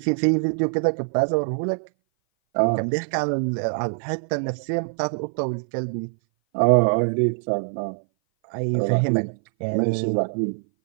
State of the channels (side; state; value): left; silent; 59 dB below the other